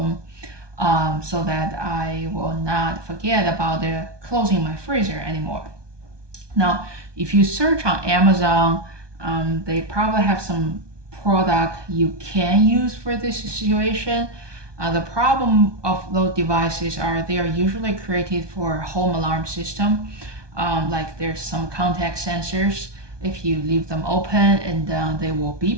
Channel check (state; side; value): late; left; 1.2 ms